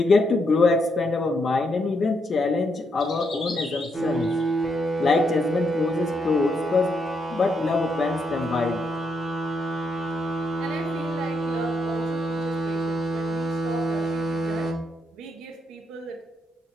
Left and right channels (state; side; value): normal; both; correlation 0.78